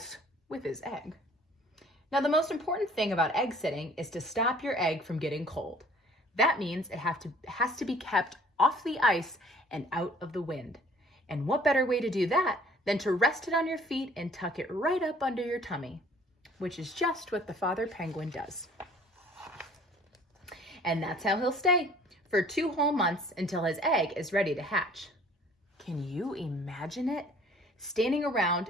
with his egg. Now, the most important thing about egg sitting is to stop your egg from getting cold. That means it has to be kept off the ice and out of the wind. And what better way to do that than to rest it on your feet and tuck it right up under your tummy, which is just what the father penguin does. And that's how he'll stay for 2 whole months until his egg is ready to hatch. Can you imagine it? Standing around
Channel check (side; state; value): both; normal; correlation 0.54